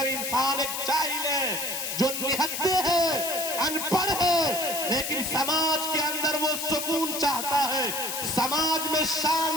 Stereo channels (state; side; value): noise; left; hiss, 4 dB below the sound